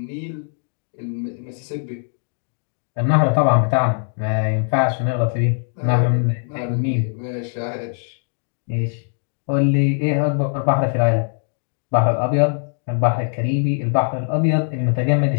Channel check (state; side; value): silent; right; 65 dB below the other